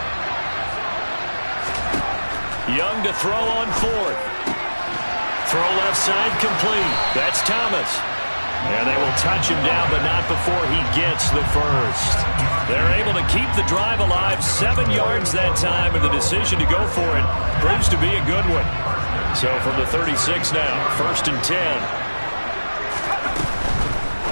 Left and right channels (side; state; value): both; inverted; correlation -1.00